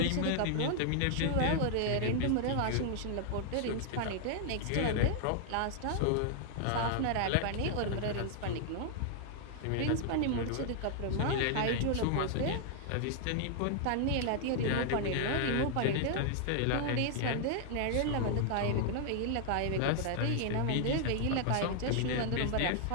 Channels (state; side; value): different; both; correlation 0.00